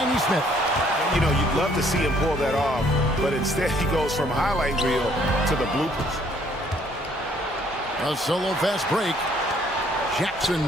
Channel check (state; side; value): normal; both; correlation 0.63